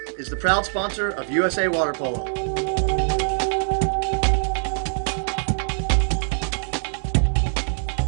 is the proud sponsor of USA Water Polo.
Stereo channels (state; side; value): silent; left; 63 dB below the other